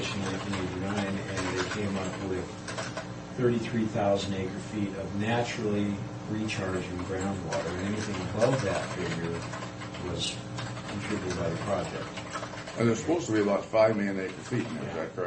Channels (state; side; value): identical; both; correlation 1.00